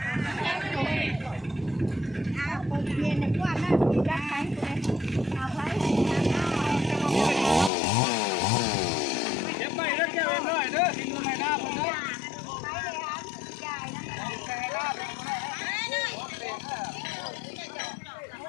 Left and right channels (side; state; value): right; drops out; at 7.7 s